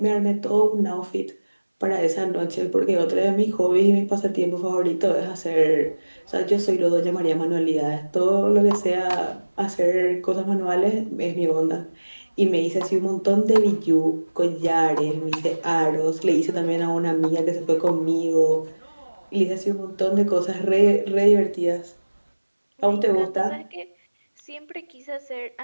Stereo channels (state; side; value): inverted; both; correlation -1.00